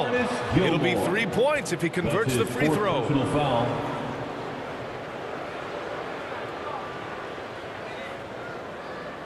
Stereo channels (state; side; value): identical; both; correlation 1.00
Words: It'll be 3 points if he converts the free throw. Foul.